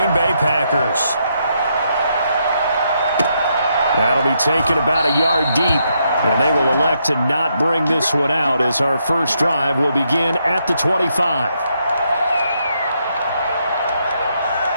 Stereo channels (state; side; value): inverted; both; correlation -0.78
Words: Bay Packers. That'll be taken about a yard deep, and they will elect to not bring this one out as our first drive will begin at the 25.